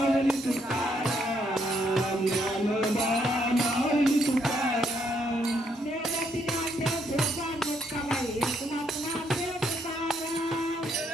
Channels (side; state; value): both; normal; correlation 0.73